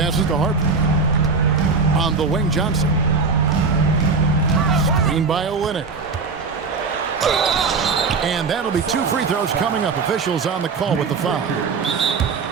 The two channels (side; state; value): left; quieter; 4.8 dB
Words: to Harper. On the wing, Johnson. Screen by Olynyk. And that'll be 2 free throws coming up. Officials on the call with the foul.